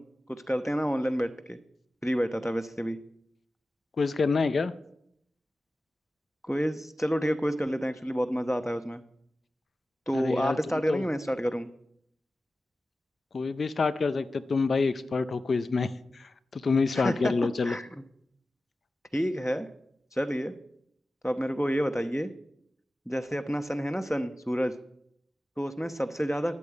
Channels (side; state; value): both; normal; correlation 0.95